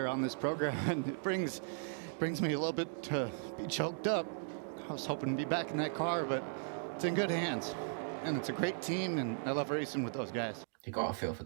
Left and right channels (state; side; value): silent; left; digital silence